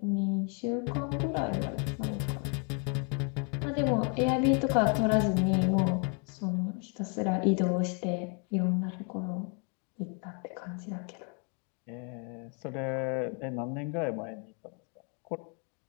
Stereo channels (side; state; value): right; quieter; 38.3 dB